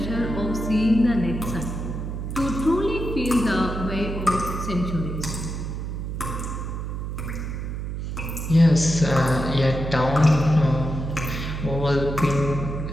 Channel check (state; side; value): noise; right; hum, 5 dB below the sound